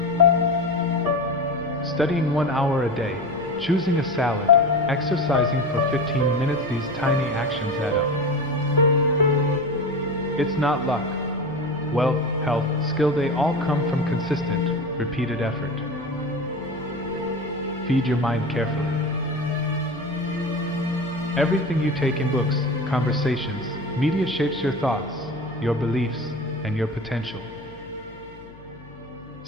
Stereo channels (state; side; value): noise; left; hum, 22 dB below the sound